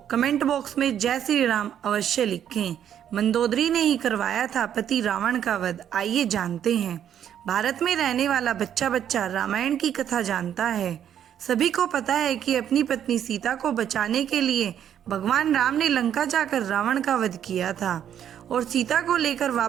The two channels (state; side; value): quieter; left; 9.7 dB